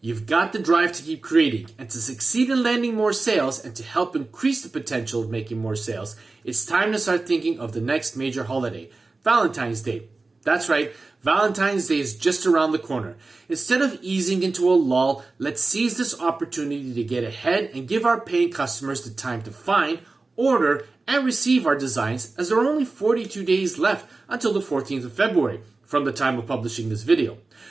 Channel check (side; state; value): left; quieter; 3.6 dB